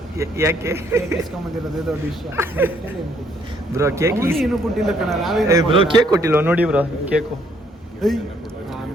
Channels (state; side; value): normal; both; correlation 0.67